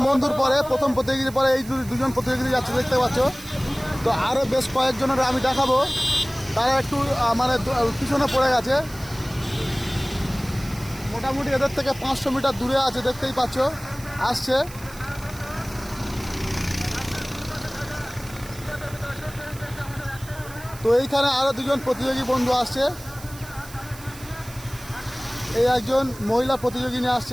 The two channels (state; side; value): noise; right; hiss, 17 dB below the sound